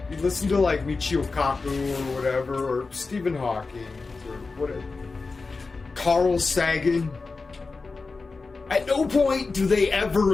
you listen to like Michio Kaku or whatever, or Stephen Hawking, or whatever, Carl Sagan. At no point do they ever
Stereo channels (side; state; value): right; quieter; 4.0 dB